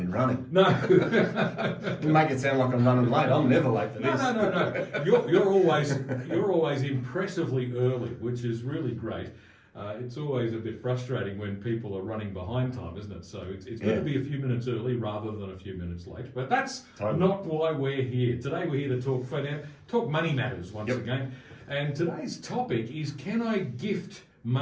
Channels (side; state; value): both; identical; correlation 1.00